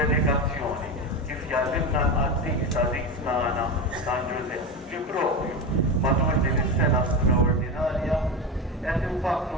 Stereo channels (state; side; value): normal; both; correlation 0.20